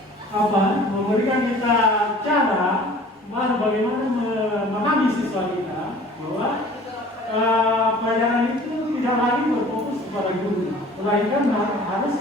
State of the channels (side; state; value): both; normal; correlation 0.47